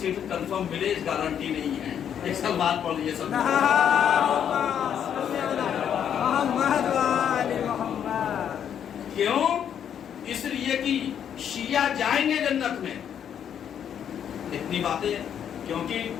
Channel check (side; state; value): right; quieter; 8.9 dB